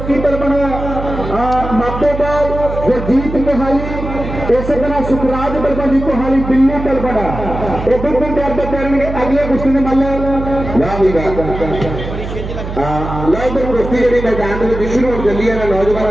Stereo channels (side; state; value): right; noise; hum, 7 dB below the sound